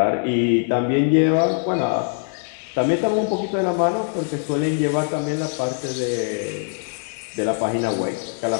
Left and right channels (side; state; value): right; silent; 58 dB below the other